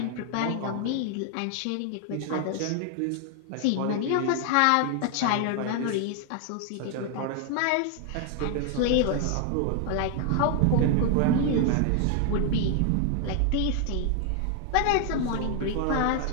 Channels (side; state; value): both; different; correlation 0.00